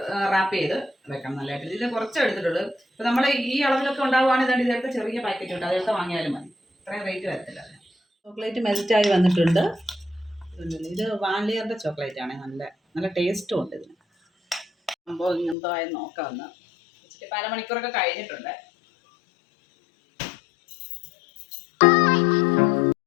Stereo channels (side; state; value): right; drops out; at 15.6 s